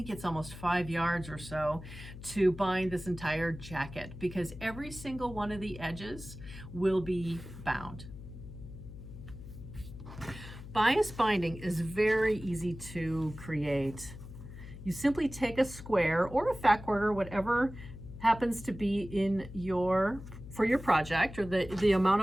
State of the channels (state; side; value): noise; left; hum, 13 dB below the sound